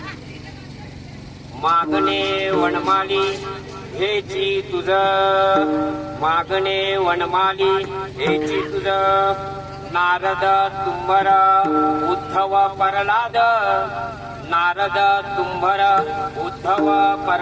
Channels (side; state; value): both; identical; correlation 1.00